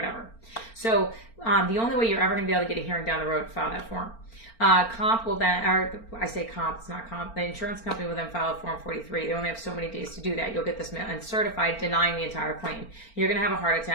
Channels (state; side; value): late; right; 4.4 ms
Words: So the only way you're ever going to be able to get a hearing down the road, file that form. Comp will then, or I say comp, it's not comp, the insurance company will then file a Form 43. They only have so many days to do that. You'll get this uncertified, denying the entire claim. You're going to have a heart